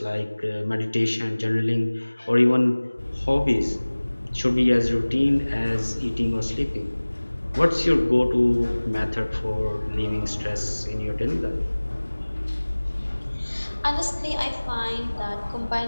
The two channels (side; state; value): both; inverted; correlation -1.00